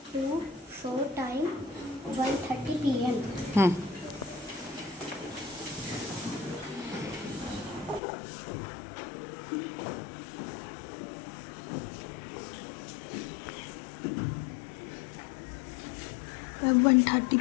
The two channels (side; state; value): right; drops out; at 8.0 s